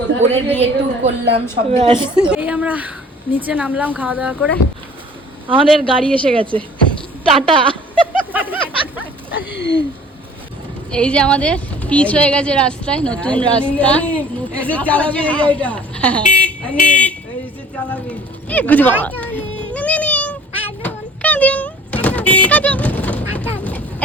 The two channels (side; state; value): both; normal; correlation 0.50